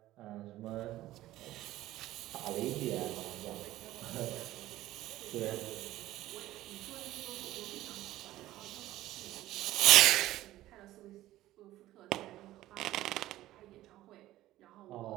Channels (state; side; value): quieter; left; 15.3 dB